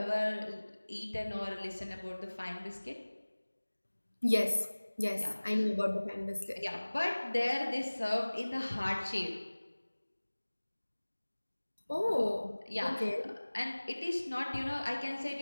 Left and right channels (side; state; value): both; inverted; correlation -1.00